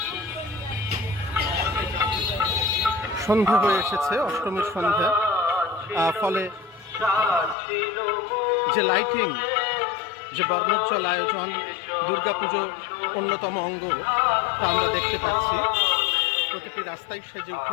সন্ধ্যা হয়ে এসেছে, অষ্টমীর সন্ধ্যা, ফলে যে লাইটিং, যে বর্ণোজ্জ্বল আয়োজন, দুর্গাপুজো অন্যতম অঙ্গ, তা আমরা দেখতে পাচ্ছি। প্রতিটি রাস্তায় সেজে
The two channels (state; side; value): drops out; right; at 7.6 s